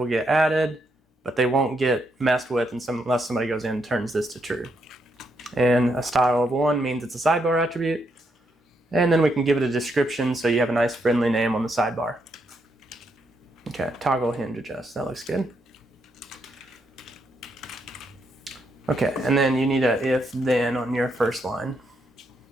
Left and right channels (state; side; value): normal; both; correlation 0.78